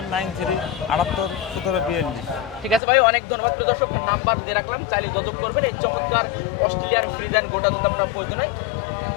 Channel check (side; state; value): right; drops out; at 2.8 s